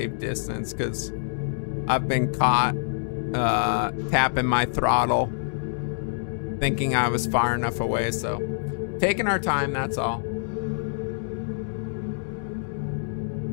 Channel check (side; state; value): right; silent; digital silence